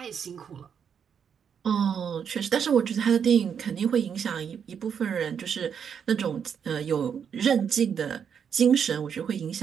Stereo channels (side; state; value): left; quieter; 7.5 dB